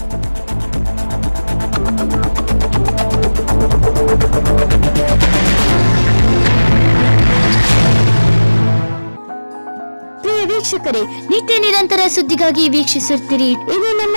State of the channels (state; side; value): inverted; both; correlation -1.00